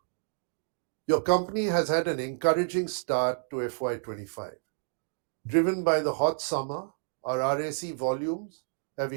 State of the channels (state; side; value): silent; left; digital silence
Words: Your company has had an encouraging start to FY25. Driven by the hot summer, our RAC volumes have